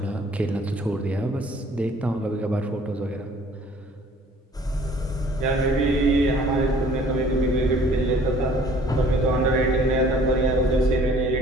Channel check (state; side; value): normal; both; correlation 0.54